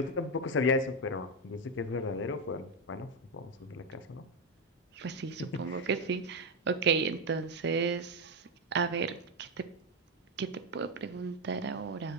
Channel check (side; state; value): both; normal; correlation 0.06